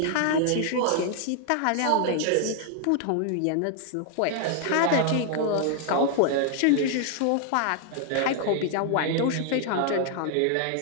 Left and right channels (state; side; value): different; both; correlation 0.00